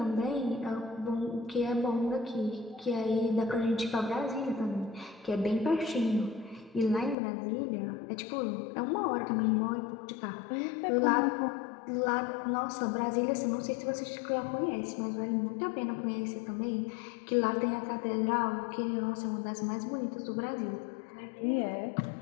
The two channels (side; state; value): right; drops out; at 7.2 s